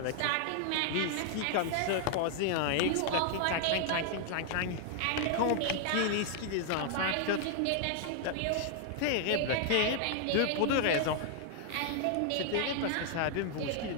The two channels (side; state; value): both; different; correlation 0.00